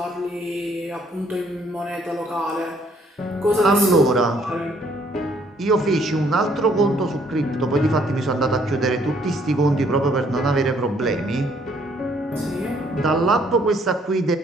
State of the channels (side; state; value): both; normal; correlation 0.65